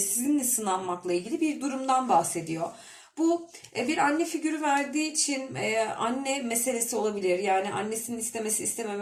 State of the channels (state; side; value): identical; both; correlation 1.00